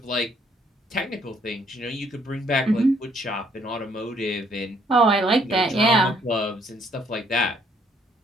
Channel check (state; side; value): normal; both; correlation 0.66